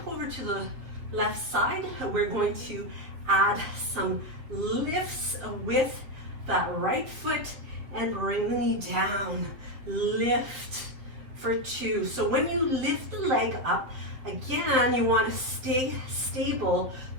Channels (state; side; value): late; left; 7.7 ms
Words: over to the left side. We're going to add some lifts with that right foot and bring the knee down. Lift for 2. So when you lift the leg up, again, you want to stay stable